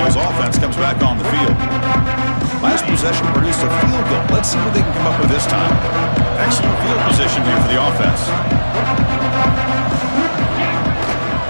offense comes back on the field. Last possession produced a field goal. Let's see what they can come up with this time. Excellent field position here for the offense.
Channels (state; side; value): inverted; both; correlation -1.00